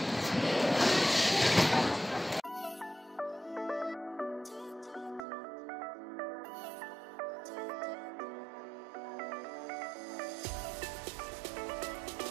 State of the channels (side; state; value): left; drops out; at 5.2 s